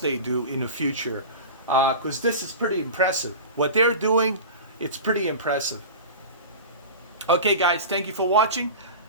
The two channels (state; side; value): inverted; both; correlation -0.30